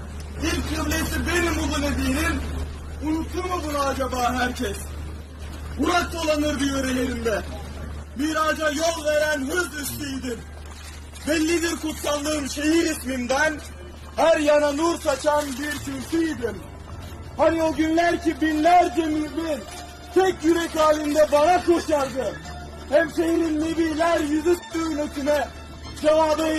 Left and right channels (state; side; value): identical; both; correlation 1.00